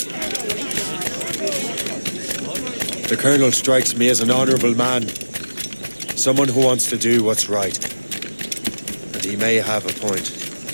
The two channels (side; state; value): both; inverted; correlation -1.00